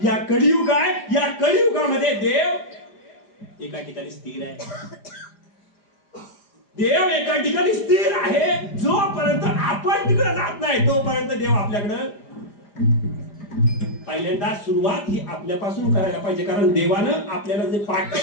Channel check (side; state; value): right; late; 4.9 ms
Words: या कलियुग आहे, या कलियुगामध्ये देव एका ठिकाणी स्थिर आहे. देव एका ठिकाणी स्थिर आहे. जोपर्यंत आपण तिकडे जात नाही तोपर्यंत देव आपल्याकडं. पहिल्यांदा सुरुवात ही आपल्यापासून करायला पाहिजे. कारण देवानं आपल्याला जे